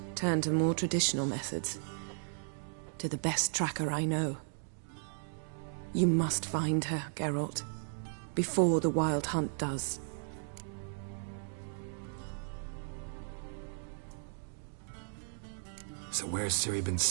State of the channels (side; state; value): left; silent; digital silence